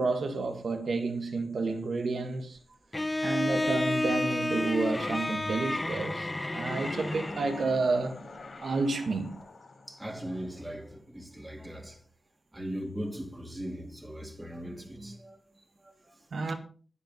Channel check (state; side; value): normal; both; correlation 0.91